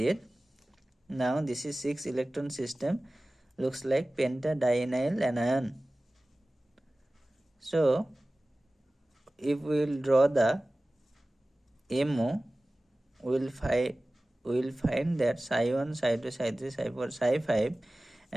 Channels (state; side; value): normal; both; correlation 0.97